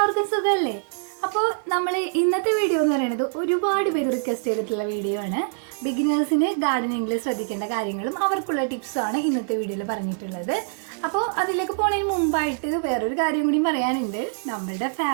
എല്ലാവർക്കും സുഖമല്ലേ? അപ്പോൾ നമ്മൾ ഇന്നത്തെ വീഡിയോ എന്ന് പറയുന്നത് ഒരുപാട് പേര് റിക്വസ്റ്റ് ചെയ്തിട്ടുള്ള വീഡിയോ ആണ്. ബിഗിനേഴ്സിന് ഗാർഡനിങ്ങിൽ ശ്രദ്ധിക്കേണ്ട കാര്യങ്ങളും അവർക്കുള്ള ടിപ്സാണ് ഇന്നത്തെ വീഡിയോയിൽ പറഞ്ഞിട്ടുള്ളത്. അപ്പോൾ അതിലേക്ക് പോകുന്നതിന് മുമ്പായിട്ട് വേറൊരു കാര്യം കൂടി പറയാനുണ്ട്. നമ്മളുടെ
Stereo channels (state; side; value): silent; left; 59 dB below the other